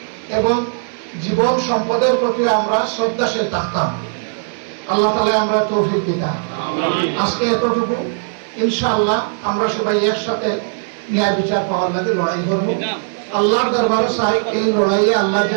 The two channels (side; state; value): left; silent; 62 dB below the other